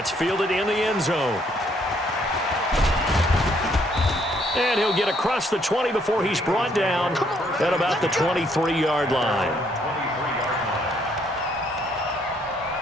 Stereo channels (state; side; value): normal; both; correlation 0.68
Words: fielded in the end zone. And he'll get across the 20 before he's brought down at about the 23-yard line.